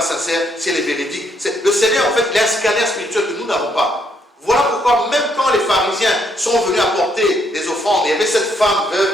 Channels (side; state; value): both; normal; correlation 0.72